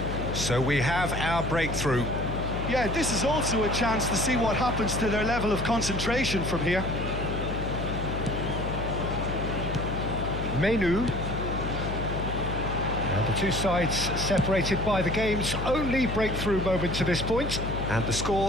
So we have our breakthrough. Yeah, this is also a chance to see what happens to their level of concentration from here. Menu. Now the two sides separated by the game's only breakthrough moment to this point, and the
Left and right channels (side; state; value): left; noise; hum, 5 dB below the sound